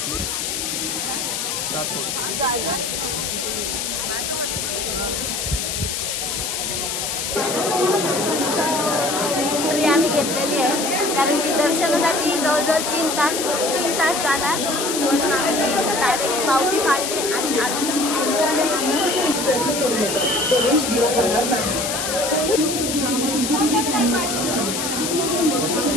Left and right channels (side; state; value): left; noise; hiss, 2 dB below the sound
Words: आम्ही घेतलेली आहे कारण की दर्शनासाठी जवळजवळ 3 तास जाणार म्हणून आम्ही डायरेक्ट पावती फाडली आणि